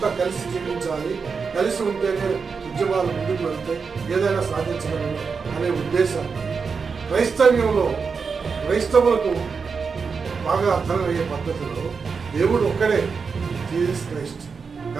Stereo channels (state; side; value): quieter; left; 5.3 dB